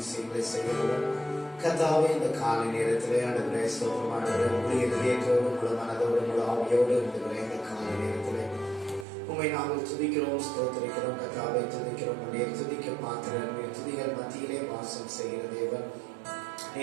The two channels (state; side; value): drops out; left; at 9.1 s